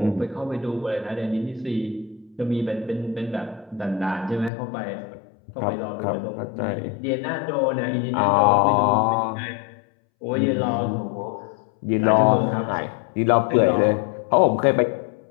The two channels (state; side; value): drops out; right; at 4.5 s